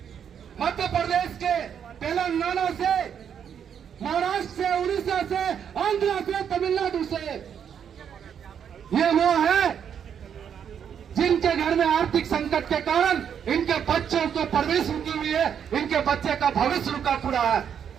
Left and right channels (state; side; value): quieter; left; 8.2 dB